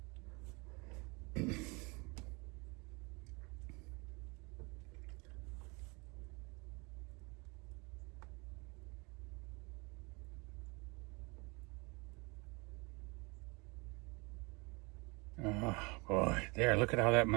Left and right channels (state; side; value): quieter; left; 28.4 dB